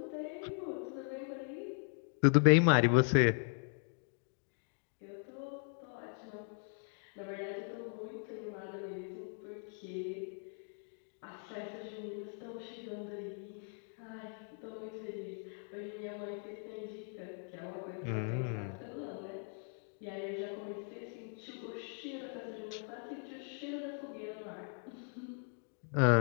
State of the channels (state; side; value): silent; right; 52 dB below the other